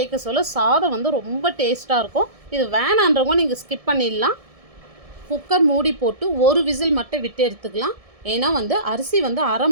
சொல்ல சாதம் ரொம்ப டேஸ்ட்டாக இருக்கும். இது வேணான்றவங்க நீங்கள் ஸ்கிப் பண்ணிடலாம். குக்கர் மூடி போட்டு ஒரு விசில் மட்டும் விட்டு எடுத்துக்கலாம். ஏன்னா அரிசி அரை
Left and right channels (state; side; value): late; left; 1.6 ms